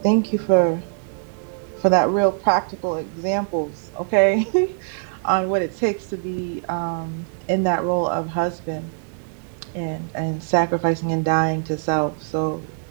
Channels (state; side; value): silent; left; digital silence